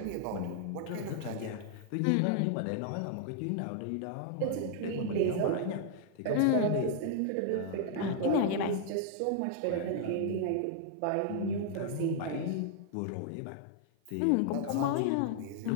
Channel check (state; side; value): different; both; correlation -0.01